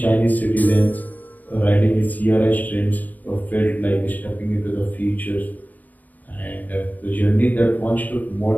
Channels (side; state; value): right; late; 0.081 ms